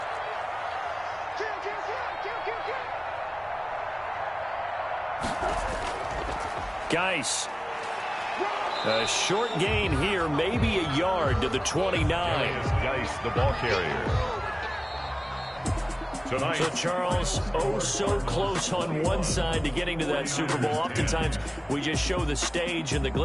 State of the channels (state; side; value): identical; both; correlation 1.00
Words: Geis. A short gain here, maybe a yard to the 29. Geis, the ball carrier. Tonight. So, Charles, oh so close on one side to getting to that Super Bowl. Oftentimes, we just show the stage and the